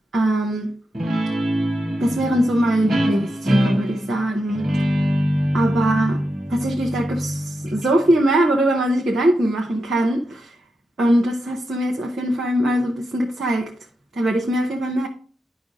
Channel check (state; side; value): normal; both; correlation 0.87